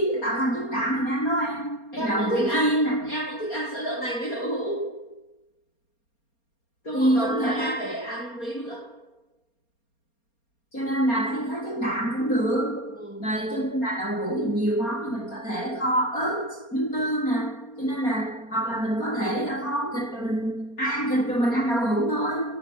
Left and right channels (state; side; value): late; right; 4.3 ms